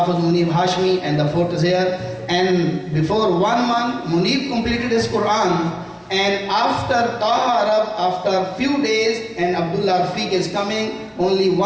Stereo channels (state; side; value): identical; both; correlation 1.00